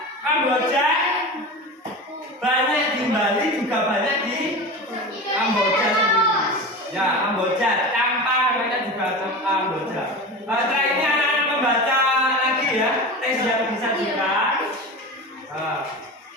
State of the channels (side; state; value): both; normal; correlation 0.29